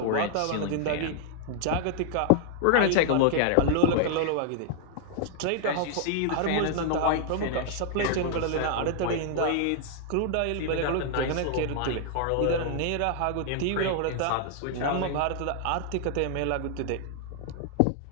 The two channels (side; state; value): both; different; correlation 0.00